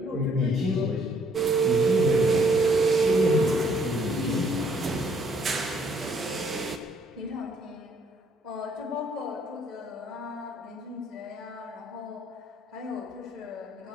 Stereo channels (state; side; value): normal; both; correlation 0.65